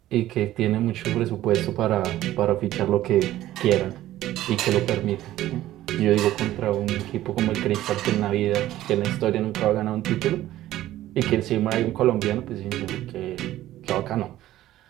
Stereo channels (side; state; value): left; quieter; 14.4 dB